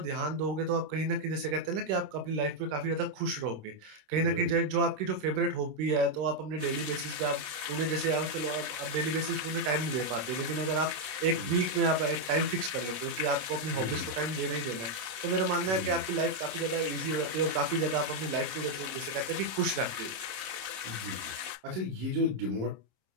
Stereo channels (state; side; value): late; left; 27 ms